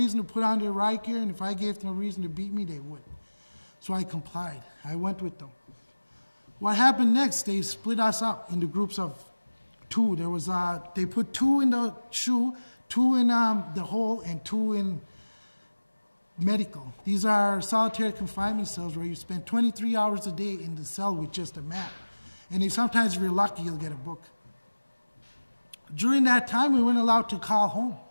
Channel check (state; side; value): inverted; both; correlation -1.00